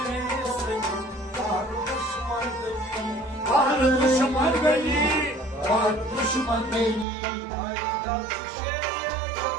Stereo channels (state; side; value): drops out; left; at 7.1 s